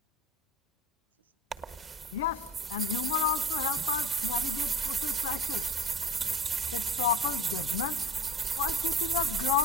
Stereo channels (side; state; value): both; normal; correlation 0.39